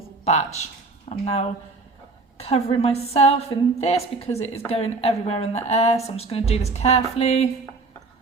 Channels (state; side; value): quieter; left; 3.7 dB